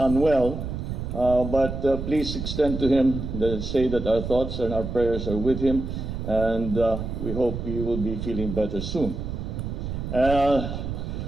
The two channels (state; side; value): noise; right; rumble, 5 dB below the sound